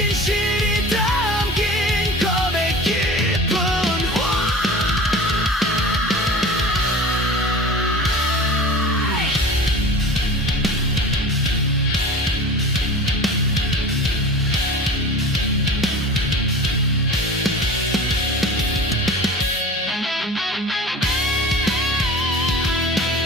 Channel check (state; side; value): normal; both; correlation 0.37